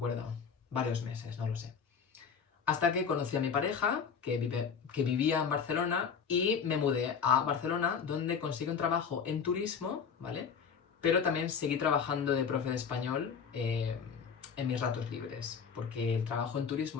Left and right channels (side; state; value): right; quieter; 6.5 dB